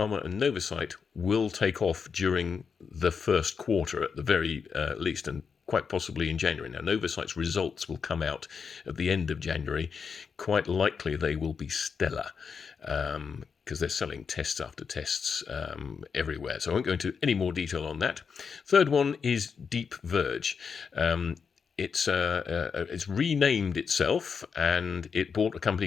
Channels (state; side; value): quieter; right; 6.0 dB